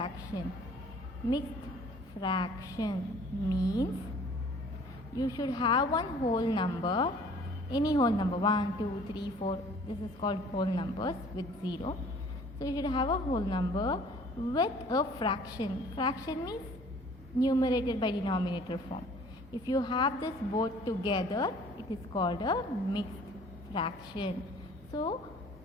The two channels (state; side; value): normal; both; correlation 0.52